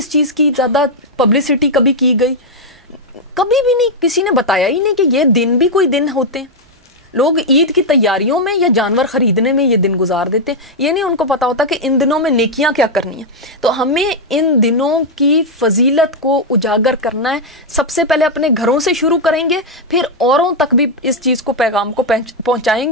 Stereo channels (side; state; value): both; normal; correlation -0.01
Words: چیز کی زیادہ پبلسٹی کبھی کی گئی، کبھی بھی نہیں، کسی نے بتایا ہی نہیں کہ یہ دن بھی کوئی دن ہوتے ہیں. لوگ عید کی تیاریوں میں یا جانور خریدنے میں یہ دن گزار دیتے ہیں، یہ نہیں ان کو پتا ہوتا کہ ان دنوں میں نیکیاں کیا کرنی ہیں. تو ہمیں ان دنوں کی فضیلت کو اجاگر کرنا ہے. سب سے پہلے اپنے گھروں سے شروع کریں گے، پھر اوروں تک بھی اس چیز کو پیغام کو پہنچائیں